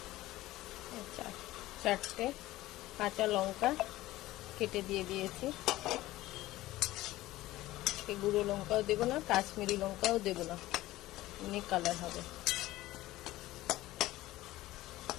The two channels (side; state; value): right; quieter; 16.8 dB